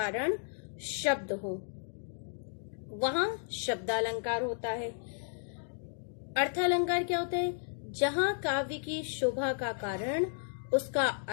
शब्द हो, वहां शब्दालंकार होता है। अर्थालंकार क्या होता है? जहां काव्य की शोभा का कारण उसका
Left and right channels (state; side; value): silent; right; digital silence